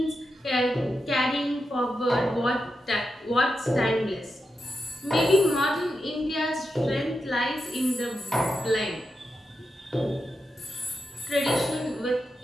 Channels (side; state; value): both; normal; correlation 0.88